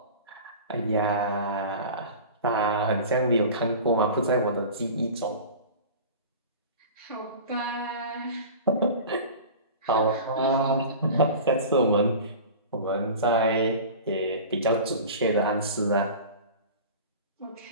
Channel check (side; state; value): both; inverted; correlation -0.36